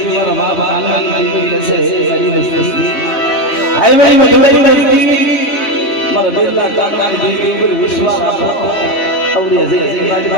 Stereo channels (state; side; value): late; right; 3.6 ms